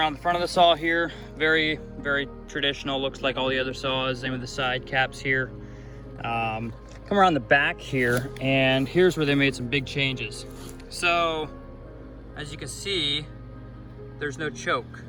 the front of the saw here, very, very traditional, looks like all the other saws. Same with the side caps here. Come around the back here, and here's where they made some big changes. So as you can see, there's no choke,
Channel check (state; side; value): identical; both; correlation 1.00